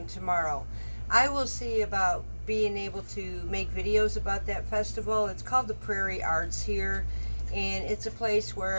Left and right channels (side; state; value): both; inverted; correlation -1.00